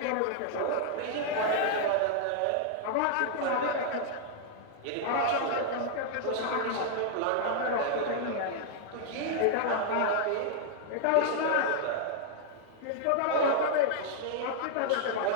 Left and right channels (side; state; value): both; different; correlation 0.00